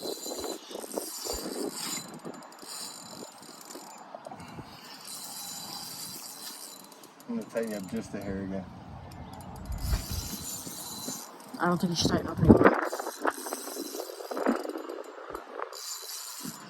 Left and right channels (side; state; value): both; identical; correlation 1.00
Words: I'm gonna tighten you up just a hair again. I don't think you should tighten up anymore.